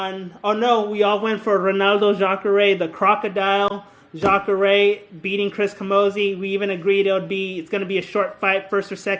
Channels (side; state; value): both; identical; correlation 1.00